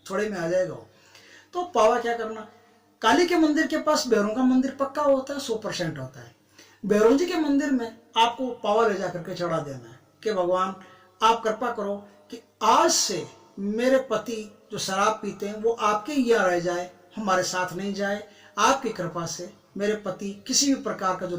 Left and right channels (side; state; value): both; identical; correlation 1.00